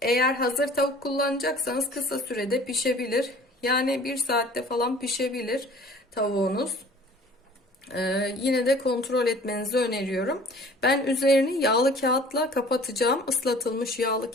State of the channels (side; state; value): both; normal; correlation 0.49